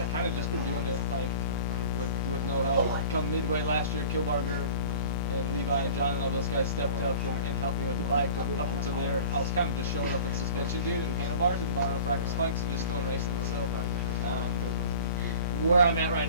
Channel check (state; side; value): inverted; both; correlation -0.41